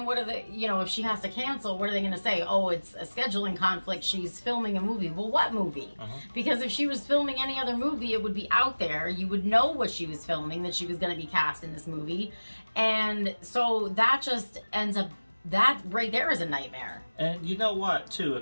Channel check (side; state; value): both; inverted; correlation -1.00